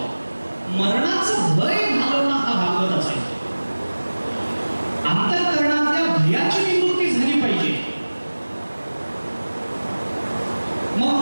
मरणाचं भय घालवणं हा भागवताचा आहे. अंतःकरणातल्या भयाची निवृत्ती झाली पाहिजे.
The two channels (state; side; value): inverted; both; correlation -1.00